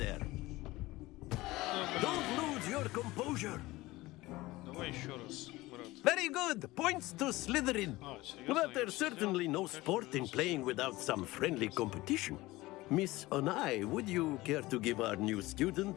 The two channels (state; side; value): quieter; right; 19.3 dB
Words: Don't lose your composure. Давай еще раз, брат. Very good. Points to Slytherin. But there's certainly no sport in playing without some friendly competition. Miss Onai, would you care to give our new